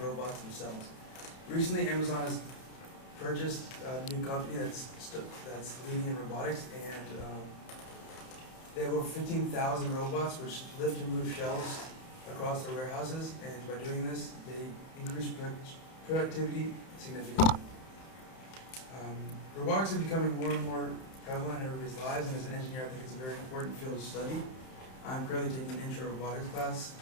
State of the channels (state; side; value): late; right; 31 ms